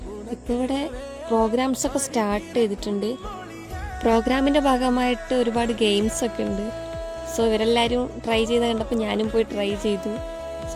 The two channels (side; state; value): both; identical; correlation 1.00